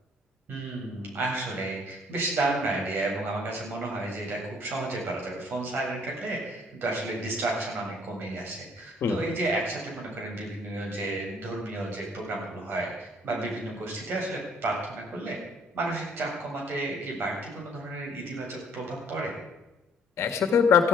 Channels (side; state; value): both; normal; correlation 0.61